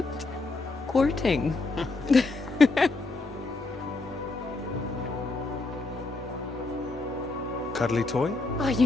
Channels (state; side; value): quieter; right; 3.4 dB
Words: courting. Cuddly toy? Oh, you